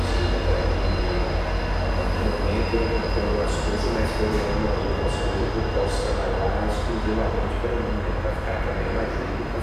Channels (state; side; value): identical; both; correlation 1.00